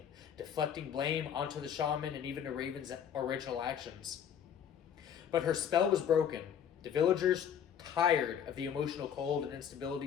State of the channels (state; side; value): quieter; right; 8.5 dB